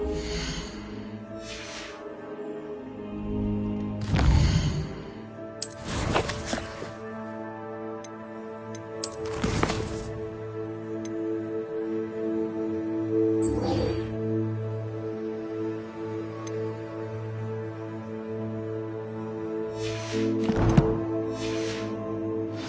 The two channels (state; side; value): identical; both; correlation 1.00